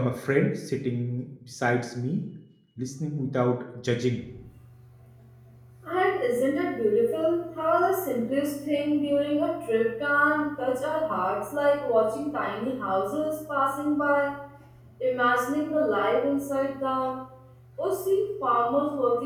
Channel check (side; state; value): both; identical; correlation 1.00